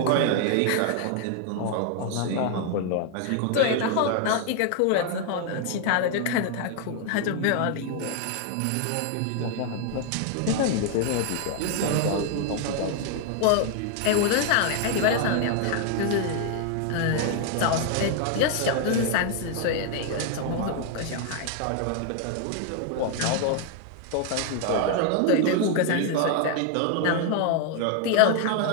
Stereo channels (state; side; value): different; both; correlation 0.00